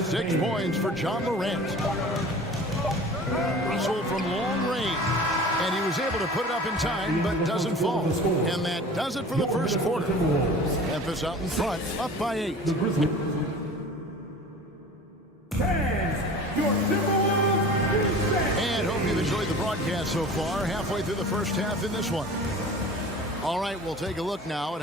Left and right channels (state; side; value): normal; both; correlation 0.41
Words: points for John Morant. Russell from long range. And he was able to put it up in time, but doesn't fall. And that does it for the first quarter. Memphis out in front, up by 8. And hope you've enjoyed the broadcast so far. Halfway through the first half in this one. All right, we'll take a look now at